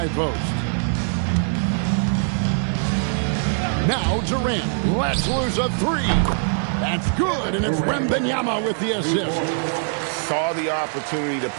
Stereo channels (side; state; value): left; silent; digital silence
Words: post. Now Durant lets loose a 3. That's good, and it's Wembanyama with the assist. Saw the opportunity to